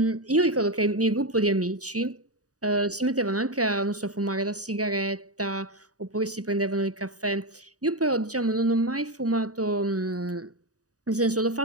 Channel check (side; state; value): left; late; 0.67 ms